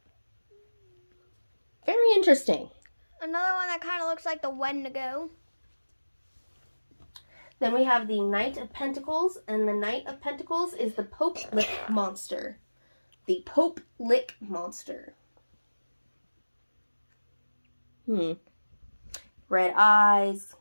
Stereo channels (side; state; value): both; inverted; correlation -1.00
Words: Very interesting. Another one that kind of looks like the Wendigo. Then we have the Knight of Pentacles, and the Knight of Pentacles is the Pope Lick Monster. The Pope Lick Monster. Red eyes.